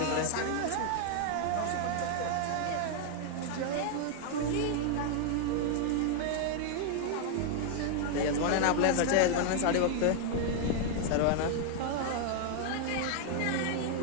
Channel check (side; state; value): both; different; correlation 0.00